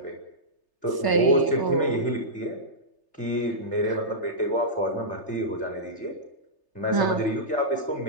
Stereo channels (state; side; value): late; right; 3.3 ms